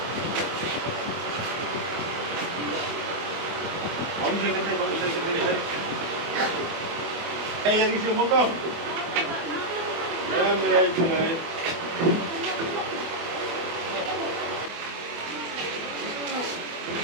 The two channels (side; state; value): left; late; 24 ms